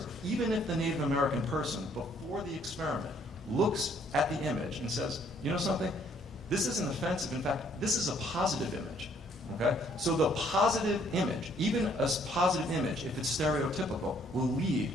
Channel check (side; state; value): both; normal; correlation 0.64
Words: even if the Native American person, before the experiment, looks at the image and says, you know something? This isn't offensive. In fact, this is a positive image. Okay? So the positive image, even a positive image, if it's stereotypical, will lead